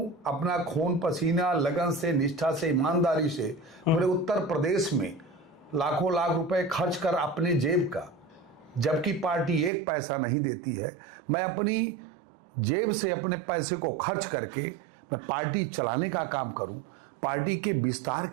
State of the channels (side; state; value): left; drops out; at 9.7 s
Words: अपना खून पसीना लगन से, निष्ठा से, ईमानदारी से पूरे उत्तर प्रदेश में लाखों लाख रुपए खर्च कर अपने जेब का, जबकि पार्टी एक पैसा नहीं देती है, मैं अपनी जेब से अपने पैसे को खर्च करके मैं पार्टी चलाने का काम करूं, पार्टी के विस्तार